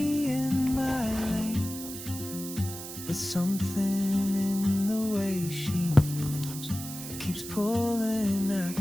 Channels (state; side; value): noise; right; hiss, 10 dB below the sound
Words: in my lane. But something in the way she moves keeps pulling